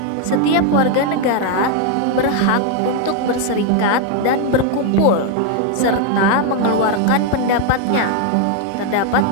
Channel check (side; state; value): both; different; correlation 0.01